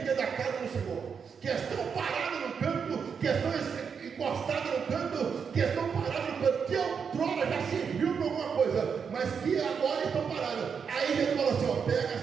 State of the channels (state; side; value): quieter; left; 6.4 dB